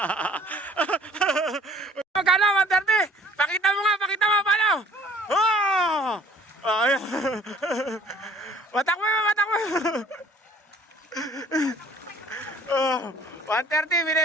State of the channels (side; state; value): both; normal; correlation 0.53